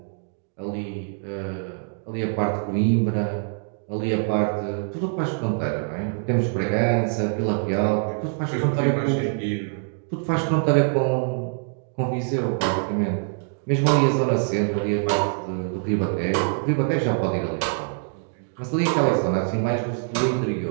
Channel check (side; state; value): left; silent; 57 dB below the other